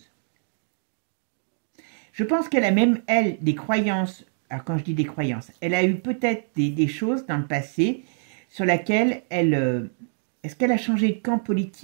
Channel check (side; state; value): left; silent; digital silence